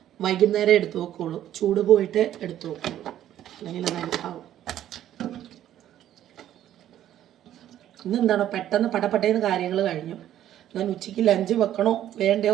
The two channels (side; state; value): left; quieter; 11.8 dB